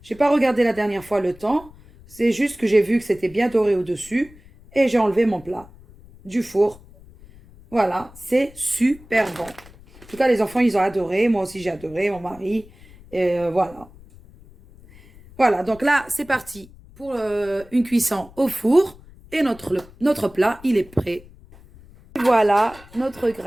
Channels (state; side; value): noise; left; rumble, 23 dB below the sound